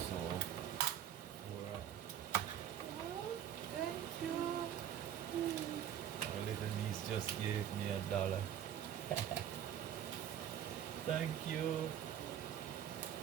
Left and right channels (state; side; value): quieter; left; 10.2 dB